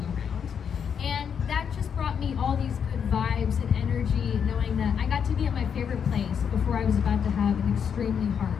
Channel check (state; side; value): quieter; right; 7.4 dB